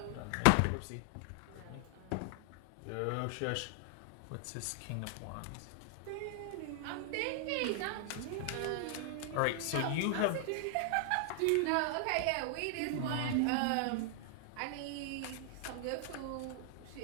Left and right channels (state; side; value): different; both; correlation 0.00